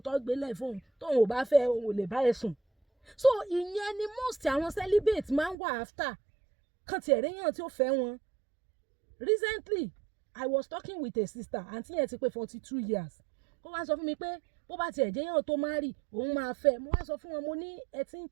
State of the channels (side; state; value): left; drops out; at 5.6 s